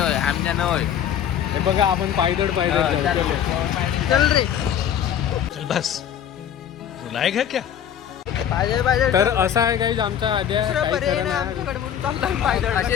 होय, आमच्या न होय. हे बघा, आपण पायदळ जाऊ. चल रे. चल बस. रुलाएगा क्या? पाहिजे तर असं आहे काही आमचा आद्या काही पर्याय खरं नाही नाही. आमच्याकडे म्हणून चालला पायदळ. असे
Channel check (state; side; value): quieter; right; 9.4 dB